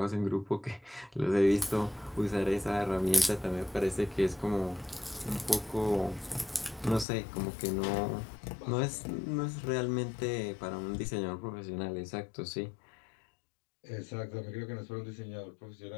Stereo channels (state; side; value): drops out; right; at 7.1 s